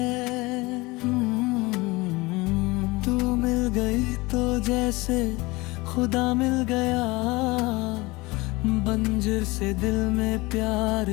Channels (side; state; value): right; quieter; 22.8 dB